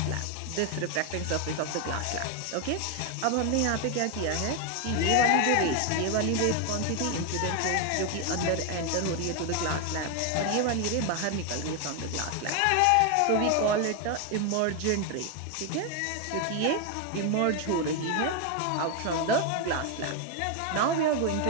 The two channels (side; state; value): both; different; correlation 0.01